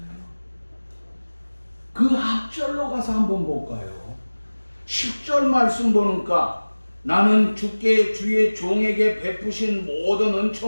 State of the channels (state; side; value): inverted; both; correlation -1.00